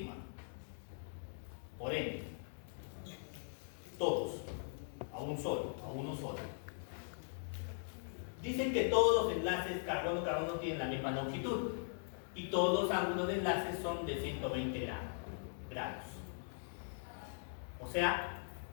Por ende, todos, a uno solo. Dicen que todos los enlaces carbono-carbono tienen la misma longitud y todos los ángulos de enlace son de 120 grados. O sea,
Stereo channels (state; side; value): silent; right; digital silence